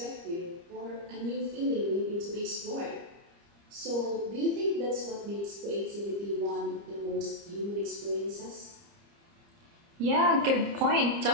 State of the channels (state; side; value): late; left; 30 ms